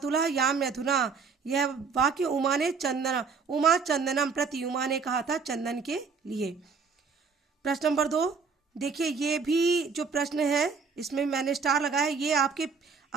याम अधुना। यह वाक्य उमा चंदनम प्रति, उमा ने कहा था चंदन के लिए। प्रश्न नंबर 2 देखिए, ये भी जो प्रश्न है इसमें मैंने स्टार लगाया है, ये आपके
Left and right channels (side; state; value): left; quieter; 5.2 dB